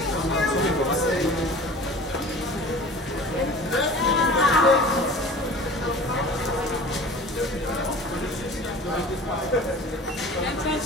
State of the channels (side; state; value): both; normal; correlation 0.41